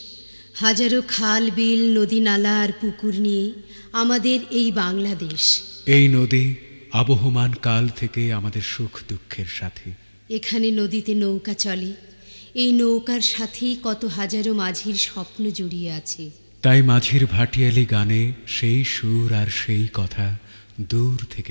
হাজারো খাল বিল নদী নালা আর পুকুর নিয়ে আমাদের এই বাংলাদেশ। এই নদী আবহমান কাল থেকে আমাদের সুখ দুঃখের সাথী। এখানে নদীতে নৌকা চলে, এই নৌকার সাথেই কত হাজারো মাঝির স্বপ্ন জড়িয়ে আছে। তাই মাঝির ভাটিয়ালি গানে সেই সুর আর সেই কথা দূর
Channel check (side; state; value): both; inverted; correlation -1.00